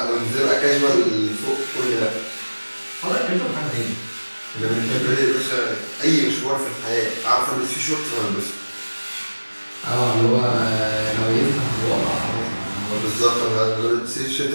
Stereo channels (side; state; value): both; inverted; correlation -1.00